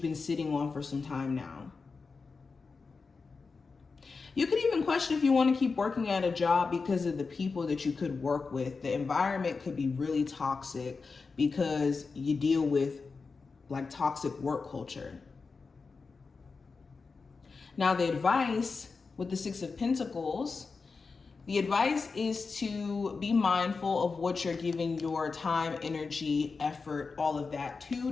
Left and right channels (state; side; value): quieter; right; 4.5 dB